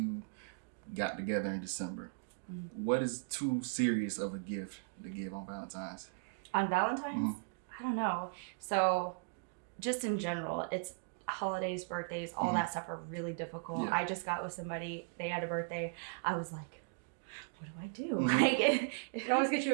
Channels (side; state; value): left; quieter; 38.0 dB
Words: got together in December. Mm-hmm. What is too serious of a gift to give on Valentine's? On Valentine's? Mhm. I don't know. So just in general, it's holidays, birthdays, all Mhm. that stuff are really difficult. Yeah. I just got with somebody, they had a birthday. I was like, what do I do? Mhm. Like, It always gets you